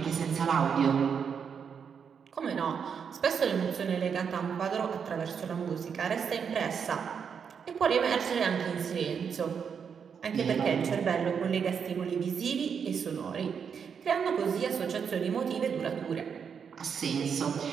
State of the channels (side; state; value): left; quieter; 6.8 dB